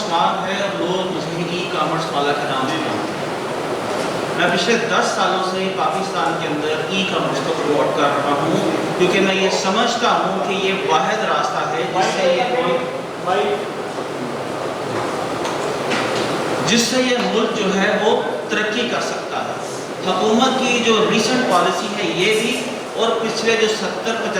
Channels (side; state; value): both; identical; correlation 1.00